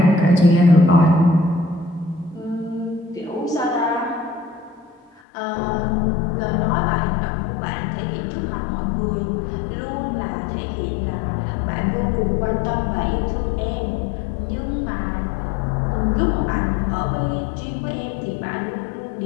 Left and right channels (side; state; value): right; drops out; at 5.2 s